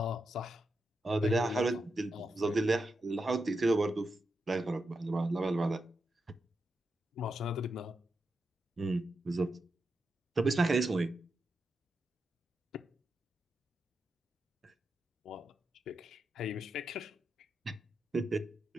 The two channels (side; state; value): both; normal; correlation 0.87